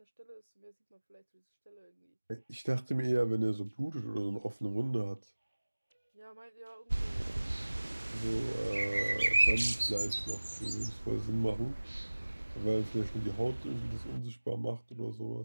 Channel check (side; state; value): both; inverted; correlation -1.00